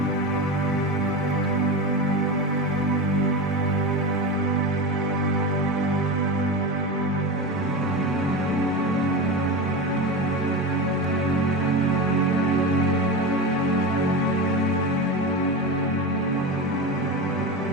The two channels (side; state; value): both; normal; correlation 0.22